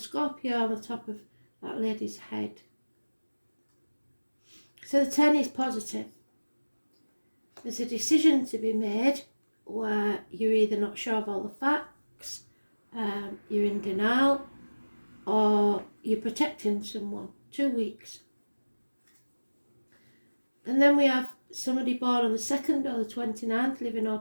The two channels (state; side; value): inverted; both; correlation -1.00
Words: on the top of that lady's head. So the 10 is positive. There's a decision to be made where you're either not sure of all the facts, you're in denial, or you're protecting someone. 2 weeks. And then we have somebody born on the 2nd or the 29th, living or